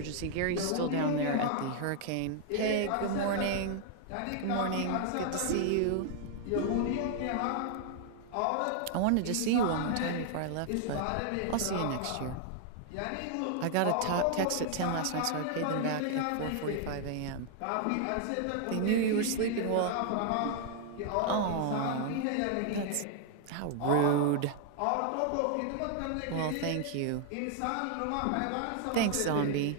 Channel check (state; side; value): different; both; correlation 0.00